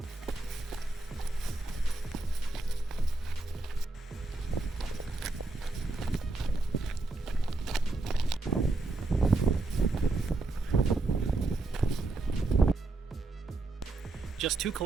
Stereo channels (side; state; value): left; quieter; 3.2 dB